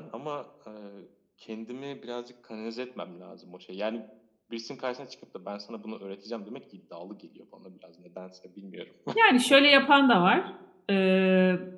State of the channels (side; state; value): both; identical; correlation 1.00